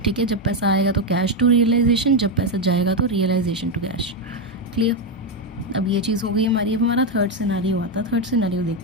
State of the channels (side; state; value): both; normal; correlation 0.06